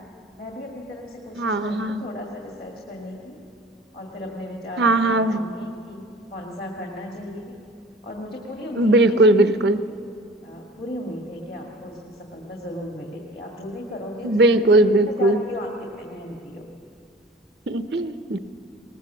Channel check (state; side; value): normal; both; correlation 0.43